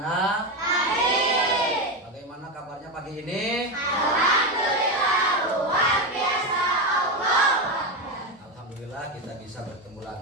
Bagaimana kabarnya pagi ini? Alhamdulillah, luar biasa Allah. Alhamdulillah kita bisa bertemu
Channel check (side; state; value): both; normal; correlation 0.13